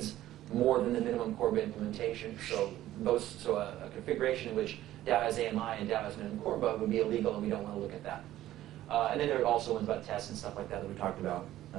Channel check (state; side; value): quieter; left; 14.0 dB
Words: more than the minimum Corba implementation. So a configuration in which DAO has AMI and DAO has minimum Corba would be illegal, and we don't want to look at that. And then there are also ones about tests and stuff like that we talked about